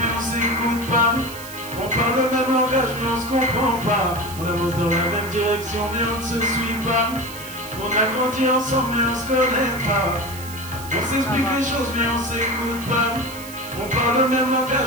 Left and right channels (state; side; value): noise; right; hiss, 14 dB below the sound